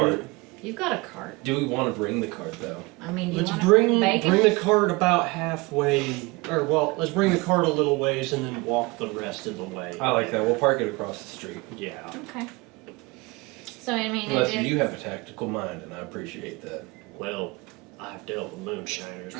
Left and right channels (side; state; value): left; quieter; 24.7 dB